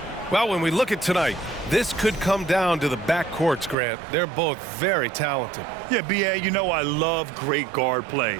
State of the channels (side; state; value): left; drops out; at 3.8 s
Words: Well, when we look at tonight, this could come down to the backcourts, Grant. They're both very talented. Yeah, B.A., you know I love great guard